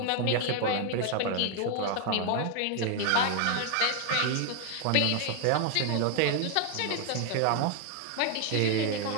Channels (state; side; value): different; both; correlation 0.00